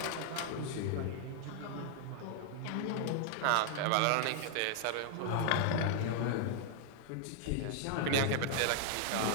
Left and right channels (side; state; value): both; different; correlation 0.00